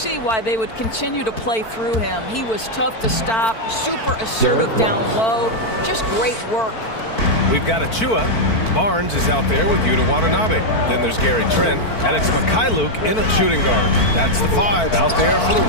why they would continue to play through him. He was tough to stop, super assertive down low. Just great work. We've got Achua. Barnes is out there with Yuta Watanabe. Then there's Gary Trent, and it's Mikhailuk in a shooting guard. That's the 5 out there for the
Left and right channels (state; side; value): late; right; 4.5 ms